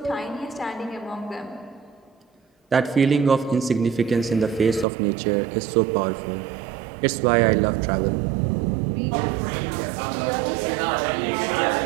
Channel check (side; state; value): left; drops out; at 4.9 s